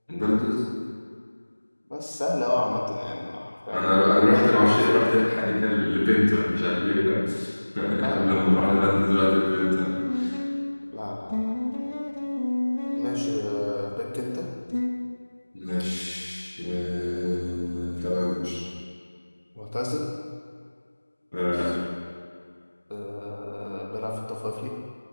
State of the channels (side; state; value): both; inverted; correlation -1.00